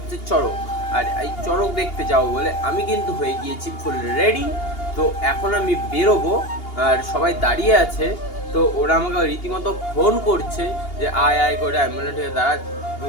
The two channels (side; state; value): right; late; 2.8 ms